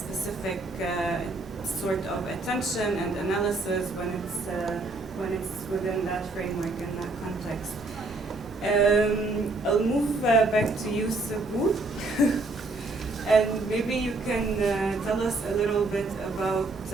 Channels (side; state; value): left; quieter; 3.2 dB